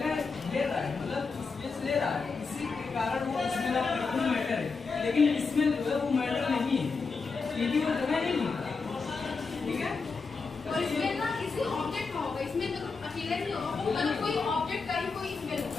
ले रहा है, मतलब स्पेस ले रहा है, इसी के कारण वो इसमें मैटर है, लेकिन इसमें जो है वो मैटर नहीं है, क्योंकि वो जगह नहीं है। ठीक है, और इसमें ना किसी ऑब्जेक्ट में होगा, इसमें तो अकेले नहीं होगा, वो मतलब कोई ऑब्जेक्ट का ही कोई स्मेल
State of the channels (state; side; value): quieter; right; 4.6 dB